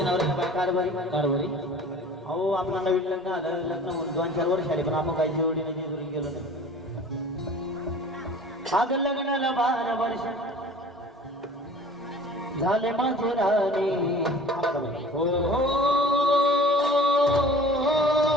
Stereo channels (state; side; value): normal; both; correlation 0.45